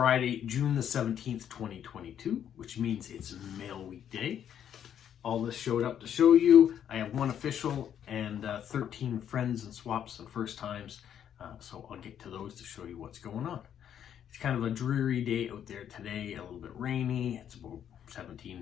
June the 17th, 2022, which means it's Mail Week Day. All this showed up to show you. I have one official and 13 friends and swaps and first times. So I'll get to those to show you what's going on. It's kind of a dreary day out there today, a little bit rainy. It's about 17,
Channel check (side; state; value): right; quieter; 9.4 dB